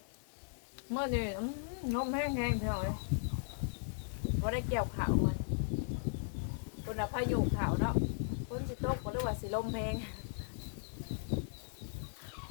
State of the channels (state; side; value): silent; right; digital silence